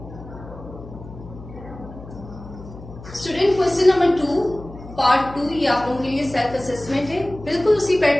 स्टूडेंट क्वेश्चन नंबर 2 पार्ट 2 ये आप लोगों के लिए सेल्फ असेसमेंट है। बिल्कुल उसी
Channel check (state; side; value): noise; left; hum, 16 dB below the sound